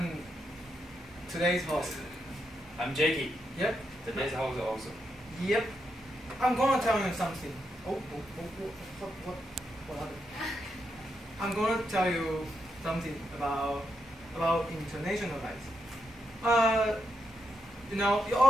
today's host. I'm Jakey. Yep. Today's host also. Yep. I'm gonna tell you something. What happened? I'm gonna tell you something about internationalized. All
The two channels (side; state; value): both; normal; correlation 0.83